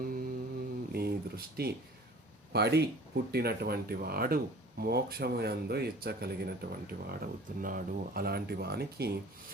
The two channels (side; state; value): both; normal; correlation 0.46